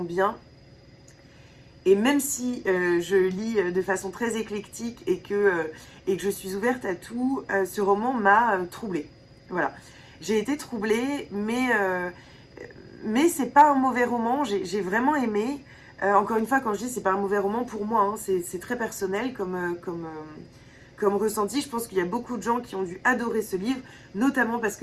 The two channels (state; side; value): identical; both; correlation 1.00